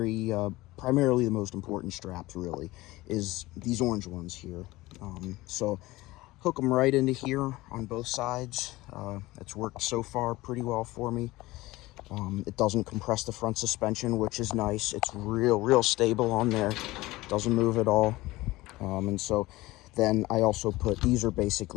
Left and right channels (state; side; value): quieter; right; 19.2 dB